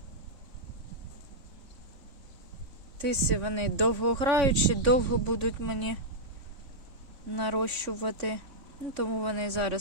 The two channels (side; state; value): left; late; 3.5 ms